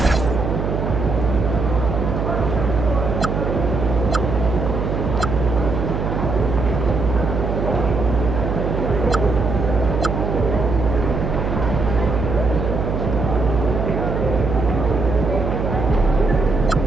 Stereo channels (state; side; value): noise; right; hum, 2 dB below the sound